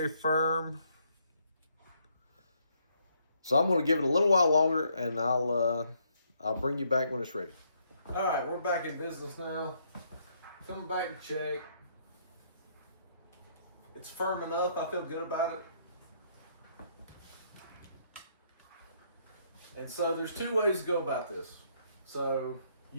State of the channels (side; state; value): both; inverted; correlation -0.71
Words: firm. So I'm going to give it a little while longer, and I'll bring you back when it's ready. All right, we're back in business now. Coming back to check. It's firm enough. I feel good about it. And so there's two ways to go about this. So